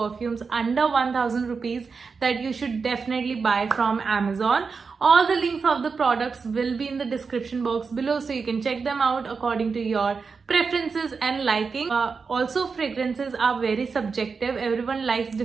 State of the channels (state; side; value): quieter; left; 5.1 dB